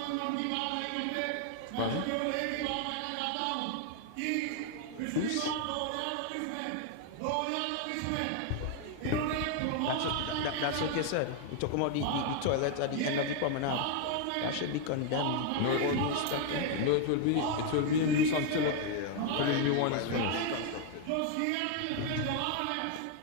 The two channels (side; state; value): both; different; correlation 0.00